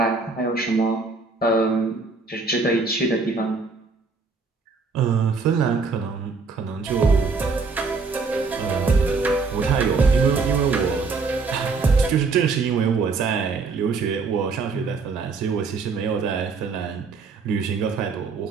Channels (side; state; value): left; quieter; 4.4 dB